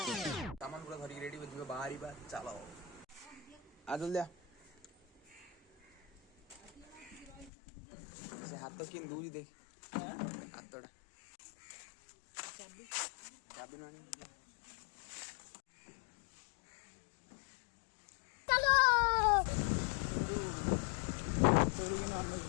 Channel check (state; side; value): drops out; right; at 7.5 s